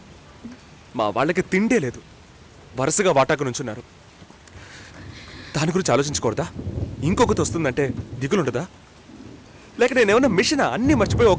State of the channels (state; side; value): identical; both; correlation 1.00